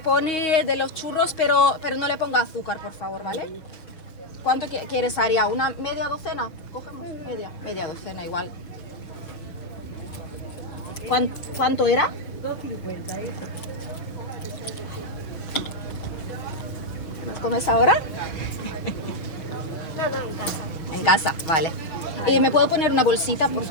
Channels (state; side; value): late; right; 6.1 ms